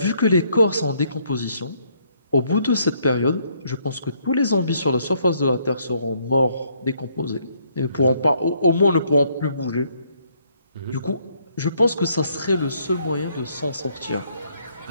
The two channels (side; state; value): both; inverted; correlation -0.69